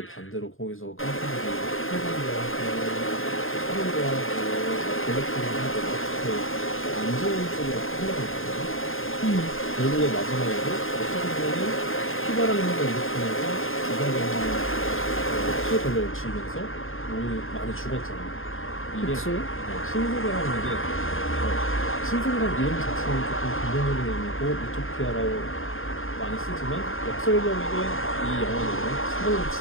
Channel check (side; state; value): right; late; 0.59 ms